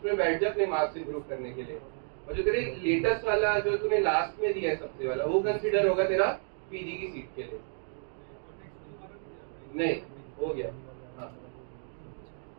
बैठ जा अपने मार्क्स इंप्रूव करने के लिए। और जो तेरे लेटेस्ट वाला जो तूने लास्ट में दिया है सबसे वाला, वो कंसीडर होगा तेरा पीजी की सीट के लिए। नहीं हो गया। हाँ,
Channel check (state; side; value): silent; left; 57 dB below the other